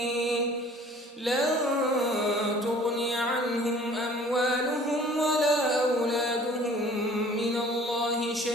لن تغني عنهم أموالهم ولا أولادهم من الله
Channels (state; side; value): normal; both; correlation 0.51